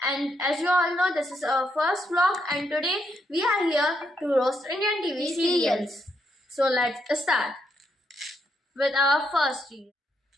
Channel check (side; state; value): both; normal; correlation 0.78